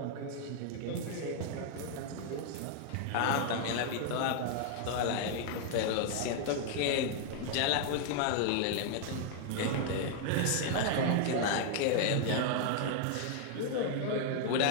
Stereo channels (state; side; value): different; both; correlation 0.00